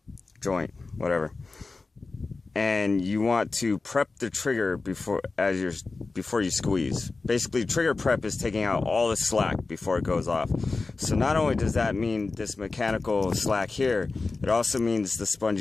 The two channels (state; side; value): quieter; right; 3.8 dB